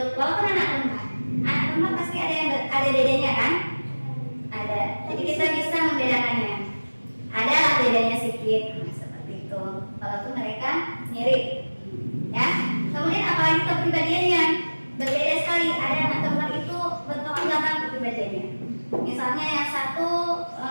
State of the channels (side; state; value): both; inverted; correlation -1.00